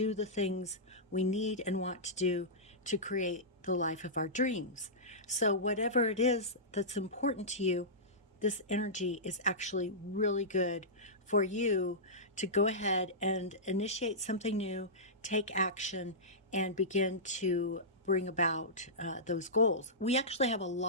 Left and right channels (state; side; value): normal; both; correlation -0.16